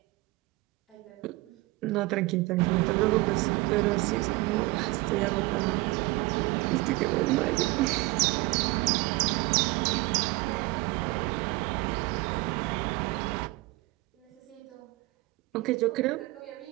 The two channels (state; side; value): quieter; left; 21.9 dB